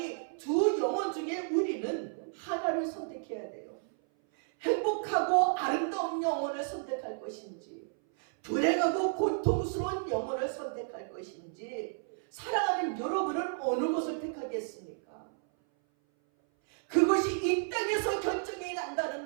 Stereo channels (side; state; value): left; silent; 56 dB below the other